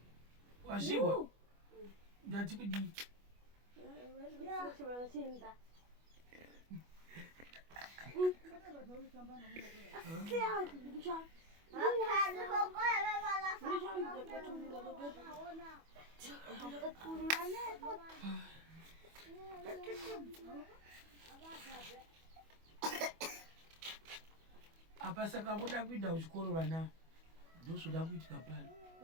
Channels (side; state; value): left; late; 25 ms